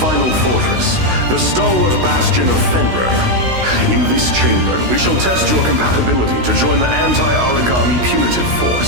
fortress, the stalwart bastion of Fenrir. In this chamber, we shall test your compatibility to join the anti-origami punitive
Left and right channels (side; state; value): left; late; 16 ms